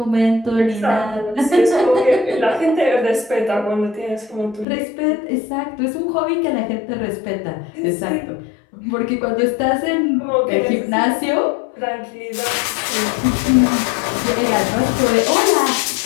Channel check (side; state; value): right; drops out; at 4.7 s